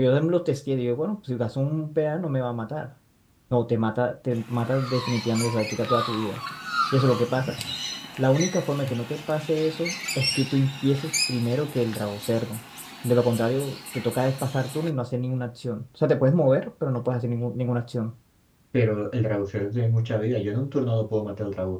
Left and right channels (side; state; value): both; identical; correlation 1.00